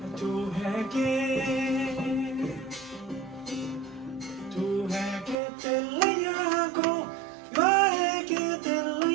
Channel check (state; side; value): drops out; left; at 5.4 s